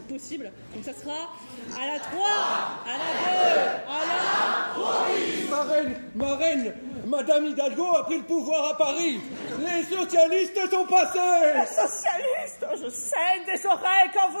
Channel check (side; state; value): both; inverted; correlation -1.00